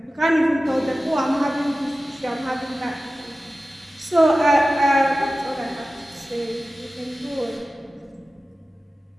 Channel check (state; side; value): normal; both; correlation 0.95